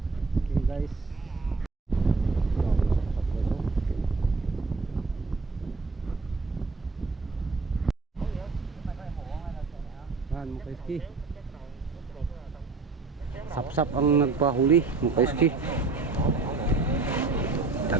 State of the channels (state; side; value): quieter; left; 4.0 dB